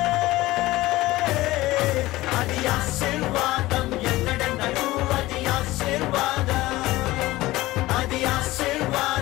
అది ఆశీర్వాదం ఎన్నడెన్నడూ అది ఆశీర్వాదం అది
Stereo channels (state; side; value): quieter; right; 18.1 dB